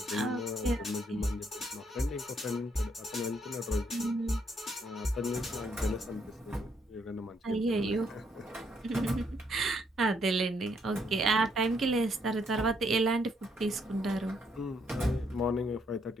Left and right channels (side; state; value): both; normal; correlation 0.72